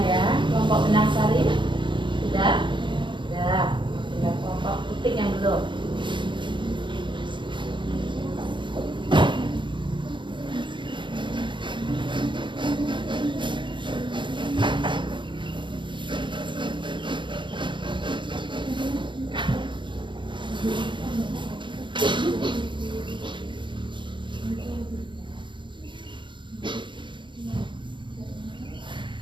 ya. Kelompok benang sari sudah. Sudah. Tinggal kelompok titik yang belum.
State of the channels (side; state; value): left; late; 0.23 ms